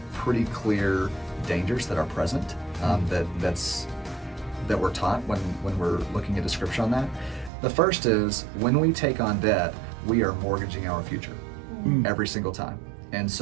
pretty clear dangers that are present that we're taught when we're looking at a scripture on that. The first is, when we take on debt, we are mortgaging our future every single time. And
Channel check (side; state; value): left; drops out; at 7.5 s